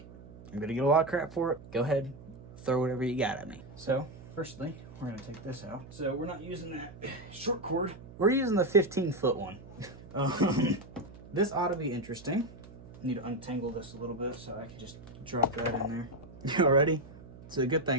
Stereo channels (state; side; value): noise; right; hum, 18 dB below the sound